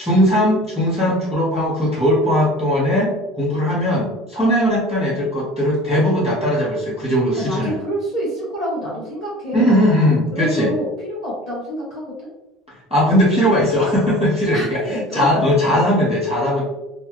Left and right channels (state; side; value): normal; both; correlation 0.42